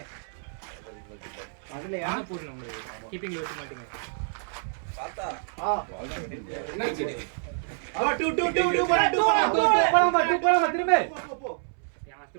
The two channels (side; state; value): left; silent; 60 dB below the other